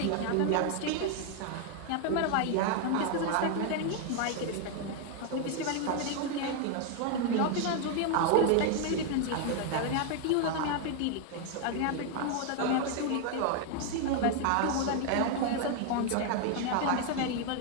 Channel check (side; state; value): both; different; correlation 0.01